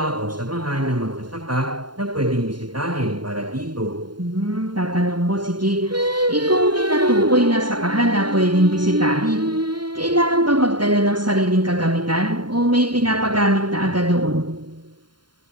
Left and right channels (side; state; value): left; late; 0.72 ms